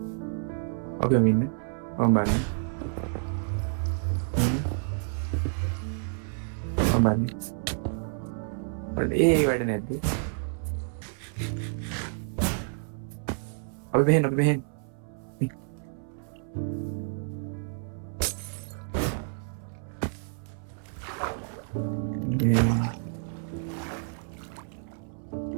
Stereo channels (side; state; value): left; silent; 58 dB below the other